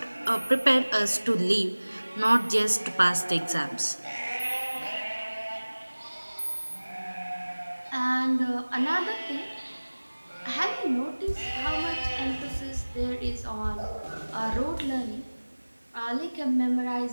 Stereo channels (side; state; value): both; inverted; correlation -1.00